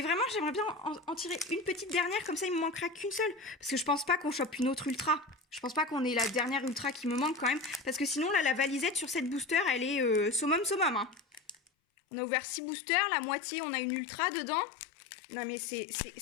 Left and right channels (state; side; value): drops out; right; at 11.6 s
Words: vraiment j'aimerais bien en tirer une petite dernière, comme ça il me manquera qu'une seule, parce que je pense pas qu'on chope une autre ultra. Je pense pas qu'on ait la dernière ultra qui me manque quand même, parce que sinon là la valisette sur cette booster elle est summum hein. On a ouvert 6 boosters, la moitié, on a une ultra dedans. Non mais c'est